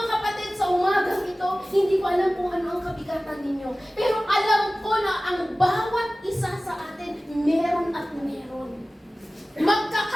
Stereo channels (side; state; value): both; normal; correlation 0.97